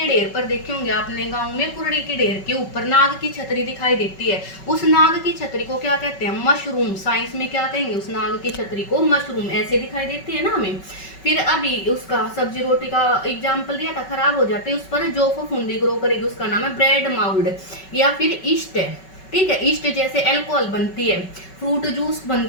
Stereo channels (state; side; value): late; right; 5.3 ms